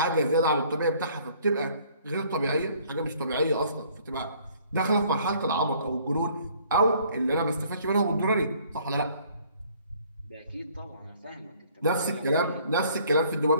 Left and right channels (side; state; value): both; inverted; correlation -0.59